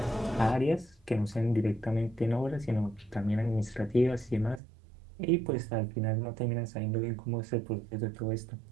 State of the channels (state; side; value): drops out; left; at 4.6 s